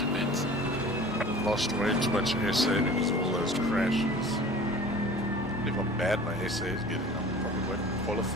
pits. Lost way too much SA because of all those crashes. If how bad my SA is getting, I probably won't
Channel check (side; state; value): both; normal; correlation 0.43